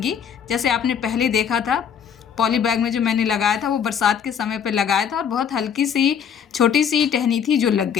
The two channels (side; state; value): right; quieter; 7.8 dB